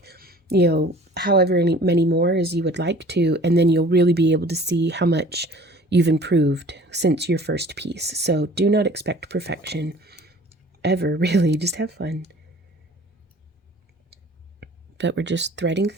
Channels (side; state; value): both; normal; correlation 0.48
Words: you know, however many more as you would like to, and then you'll really be able to see how much you've improved since your first piece. So do not expect perfection ever, really. Just have fun. But we're just threading